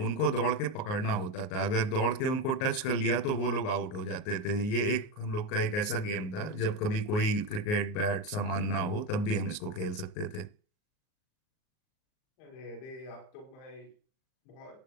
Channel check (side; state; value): right; late; 38 ms